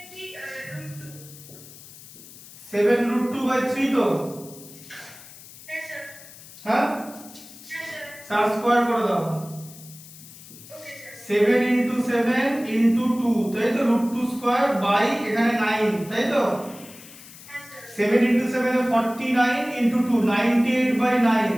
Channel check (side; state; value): left; noise; hiss, 18 dB below the sound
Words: 7√2/3 তো। হ্যাঁ স্যার। হ্যাঁ, হ্যাঁ স্যার। তার স্কয়ার করে দাও। Okay sir. 7 × 7 × 2, তাই তো, √2 স্কয়ার বাই এখানে 9, তাই তো। হ্যাঁ স্যার। 7 × 7 এ 49 × 2 98/9,